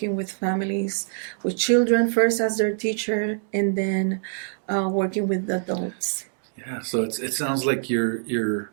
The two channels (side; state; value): left; silent; digital silence